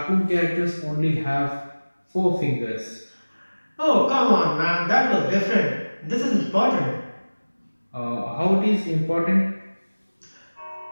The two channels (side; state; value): both; inverted; correlation -1.00